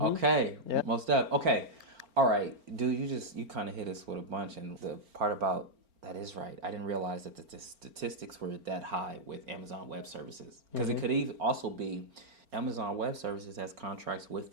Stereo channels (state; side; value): late; left; 4.4 ms